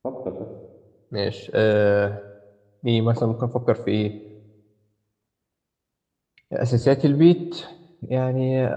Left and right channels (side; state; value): both; identical; correlation 1.00